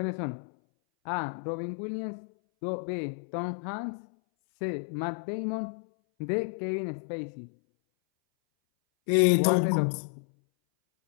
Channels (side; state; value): right; silent; 58 dB below the other